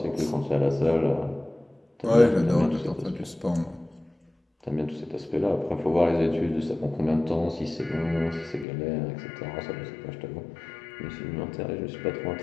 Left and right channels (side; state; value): right; drops out; at 8.7 s